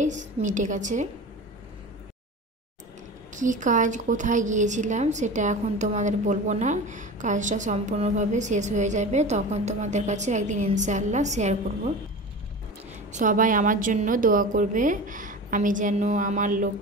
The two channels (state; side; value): normal; both; correlation 0.32